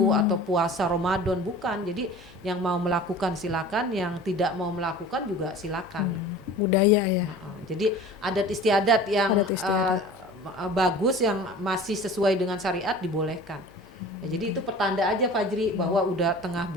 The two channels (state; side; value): normal; both; correlation 0.40